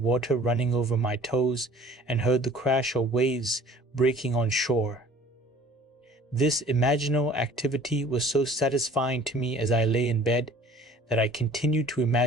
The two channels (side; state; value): both; normal; correlation 0.49